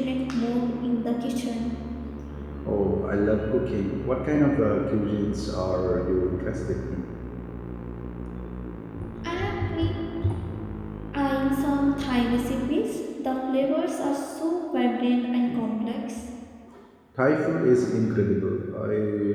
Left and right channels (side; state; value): both; identical; correlation 1.00